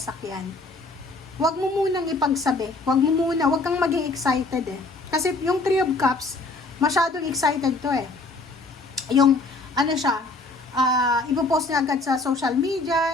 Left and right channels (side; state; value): right; quieter; 3.3 dB